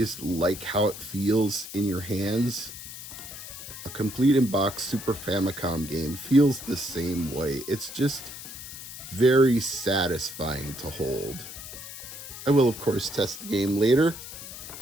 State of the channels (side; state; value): left; noise; hiss, 12 dB below the sound